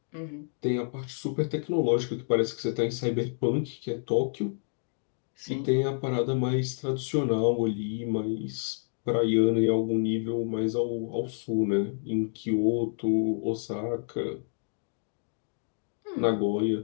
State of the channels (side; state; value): right; silent; digital silence